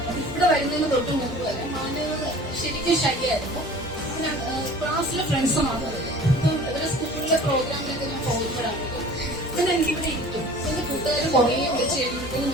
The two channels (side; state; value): both; normal; correlation 0.44